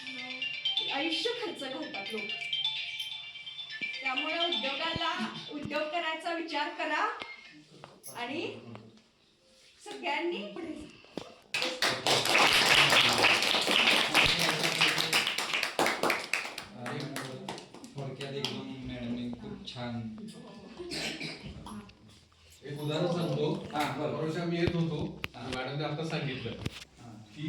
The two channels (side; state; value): both; identical; correlation 1.00